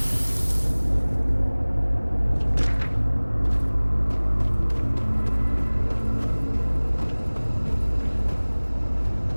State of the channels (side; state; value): both; inverted; correlation -1.00